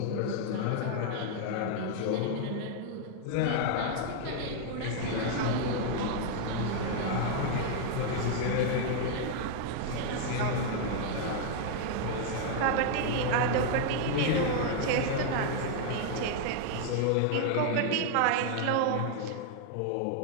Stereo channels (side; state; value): both; different; correlation 0.00